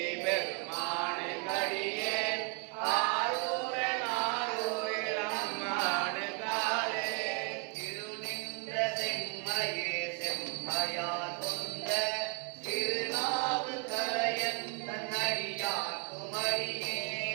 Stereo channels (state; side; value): quieter; left; 34.4 dB